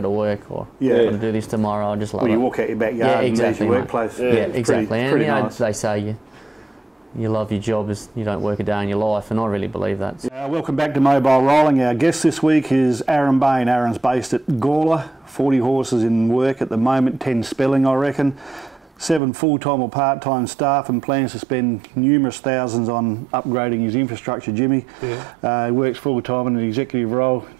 to work or got to do this tomorrow. I just love it. You walk out your backyard and there's your workplace. Exactly. Pretty And nice. they say you love your job as you don't work a day in your life, and I really believe that. Welcome back to Mobile Rolling. Our guest this week is Aaron Bain. Aaron's based at Gawler, 40 horses in work at the moment, 10 spelling, I reckon. 7 full-time or part-time staff, and plans to spend numerous thousands on upgrading his infrastructure, Jimmy. He works full-time in an executive role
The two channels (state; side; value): drops out; left; at 19.2 s